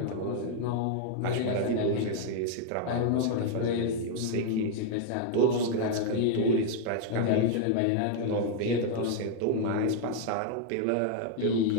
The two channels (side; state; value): both; different; correlation 0.00